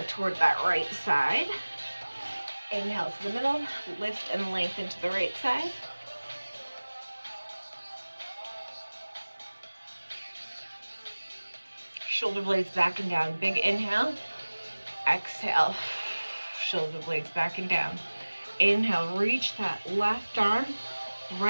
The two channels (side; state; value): both; inverted; correlation -1.00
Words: toward that right side. Inhale to the middle, lift and lengthen to the right side. Shoulder blades back and down. Big inhale. Exhale. Shoulder blades back and down. Inhale, reach that left arm.